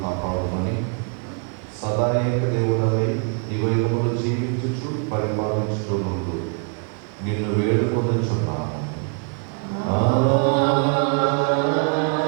సదా ఏక దేవుడవై యుగములు జీవించుచు పరిపాలించుతూ నుండు నిన్ను వేడుకొనుచున్నాను.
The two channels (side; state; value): left; quieter; 36.8 dB